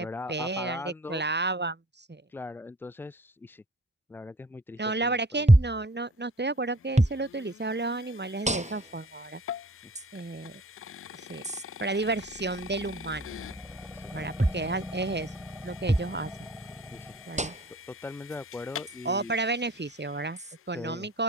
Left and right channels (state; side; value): normal; both; correlation 0.51